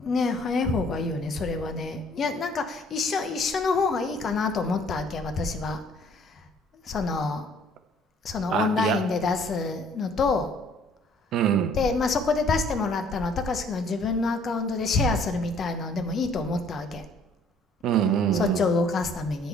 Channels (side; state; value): both; normal; correlation 0.58